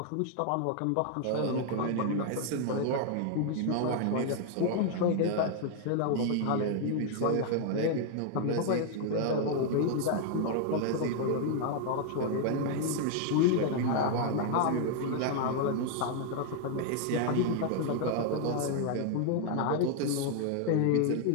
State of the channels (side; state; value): both; different; correlation 0.00